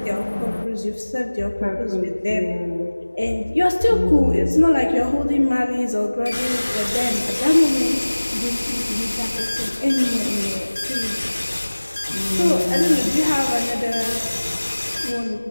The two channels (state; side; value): inverted; both; correlation -1.00